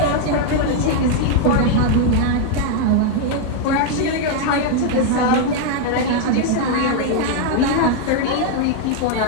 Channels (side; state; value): both; different; correlation 0.00